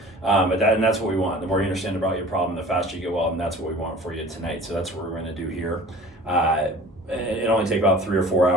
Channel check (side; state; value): both; normal; correlation 0.43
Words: And that's what we want. The more you understand about your problem, the faster you get well, and that's what we want for you tonight. So that's what we're going to do here. It only take about 3 or 4